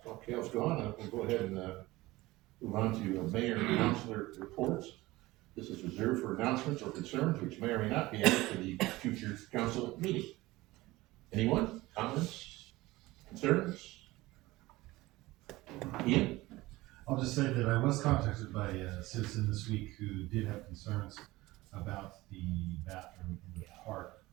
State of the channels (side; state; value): left; quieter; 19.3 dB